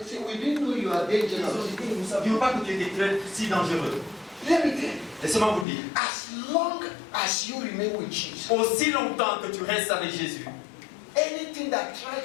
said, we didn't know you are dangerous. Nous ne savions pas que tu étais si dangereux. Let me tell you, Laissez-moi vous dire. as long as you remain with Jesus, Aussi longtemps que tu restes avec Jésus, anything that tries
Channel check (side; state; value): right; drops out; at 5.7 s